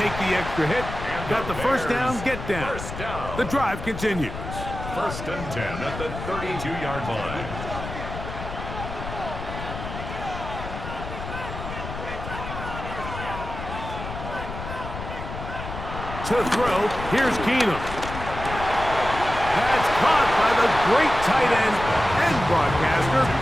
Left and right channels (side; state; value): left; noise; rumble, 8 dB below the sound